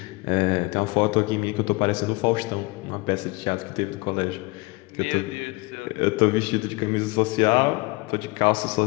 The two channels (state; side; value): quieter; right; 25.5 dB